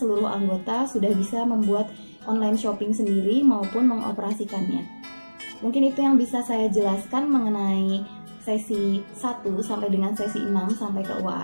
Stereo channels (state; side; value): inverted; both; correlation -1.00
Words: anggota sudah bisa membuat online shopping sendiri maupun mengoperasikannya. Mungkin itu yang bisa saya jelaskan mengenai sesi 1 sampai dengan sesi 6 sampai ke